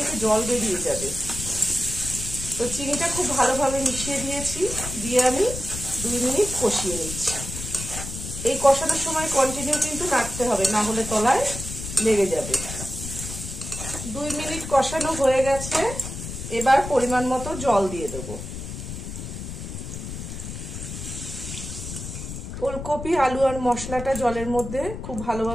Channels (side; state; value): left; noise; rumble, 8 dB below the sound